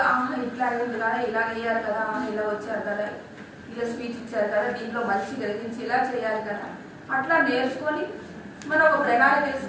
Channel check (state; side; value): identical; both; correlation 1.00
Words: ఇట్లా అయింది కదా, ఇలా అయ్యారు కదా, ఇలా వచ్చారు కదా, ఇలా స్పీచ్ ఇచ్చారు కదా, దీంట్లో మంచి గ్రహించి ఇలా చేయాలి కదా, అట్లా నేర్చుకొని మనం ఒక ప్రణాళిక